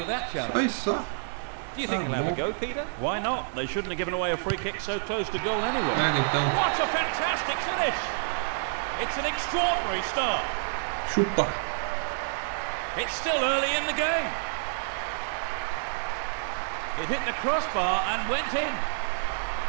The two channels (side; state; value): left; silent; digital silence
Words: that challenge. Olha só. Do you think he'll have a go, Peter? Why not? They shouldn't have given away a free kick so close to goal anyway. Pega então. What a fantastic finish! It's an extraordinary start. Chupa. It's still early in the game. It hit the crossbar and went in.